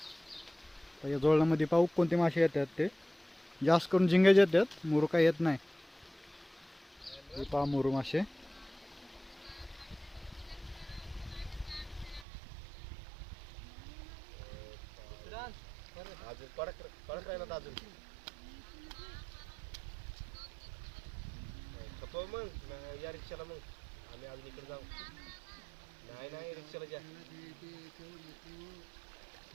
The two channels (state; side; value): drops out; left; at 12.2 s